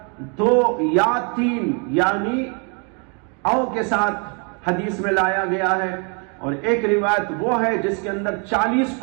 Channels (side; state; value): left; quieter; 36.2 dB